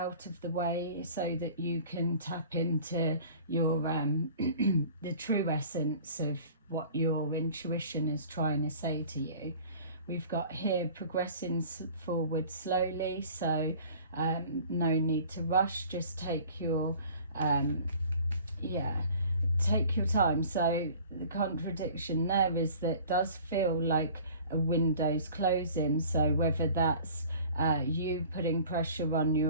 of the way, so that you can tap into your the true essence of what your intuition is trying to say to you. We've got here progressing forward slowly, so no need to rush. Just take your take your time. So the contradiction there is that it does feel like a window's closing. So whether that's you putting pressure on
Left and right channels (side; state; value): both; inverted; correlation -0.47